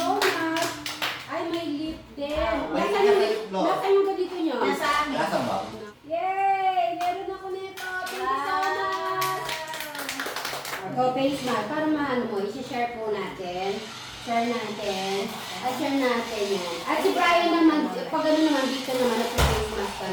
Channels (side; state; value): both; identical; correlation 1.00